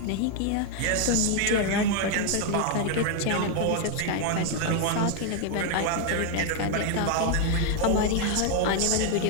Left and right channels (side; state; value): both; different; correlation 0.01